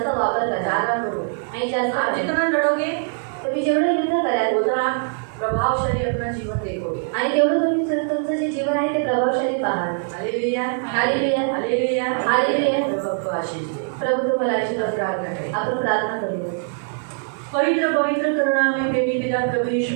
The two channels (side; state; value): left; silent; digital silence